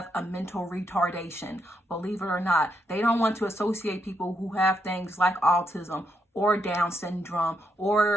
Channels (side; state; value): both; normal; correlation 0.79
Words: a mental retardation. Believe it or not, they don't want to associate people who have things like autism or Down syndrome